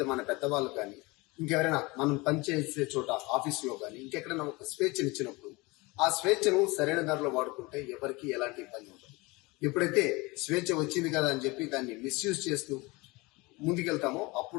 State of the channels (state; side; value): quieter; right; 24.1 dB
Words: మన పెద్దవాళ్ళు కానీ ఇంకెవరైనా మనం పనిచేసే చోట ఆఫీసులో కానీ ఇంకెక్కడైనా ఒక స్వేచ్ఛనిచ్చినప్పుడు ఆ స్వేచ్ఛను సరైన దారిలో వాడుకుంటే ఎవరికి ఎలాంటి ఇబ్బంది ఉండదు. ఎప్పుడైతే స్వేచ్ఛ వచ్చింది కదా అని చెప్పి దాన్ని మిస్యూజ్ చేస్తూ ముందుకెళ్తామో